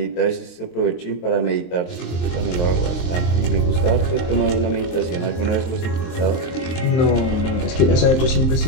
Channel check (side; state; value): right; late; 23 ms